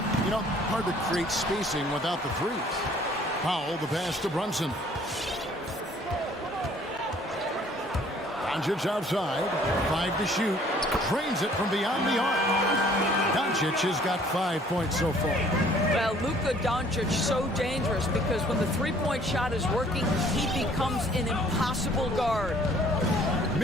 You know, hard to create spacing without the threes. Powell, the pass to Brunson. Doncic outside, 5 to shoot, drains it from beyond the arc. Doncic has got 5 points so far. Well, Luka Doncic so dangerous because when the 3-point shot is working, he becomes an impossible guard.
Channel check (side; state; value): both; normal; correlation 0.57